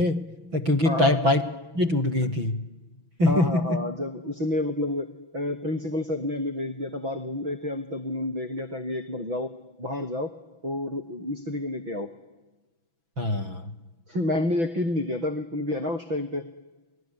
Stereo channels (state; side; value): late; left; 6.1 ms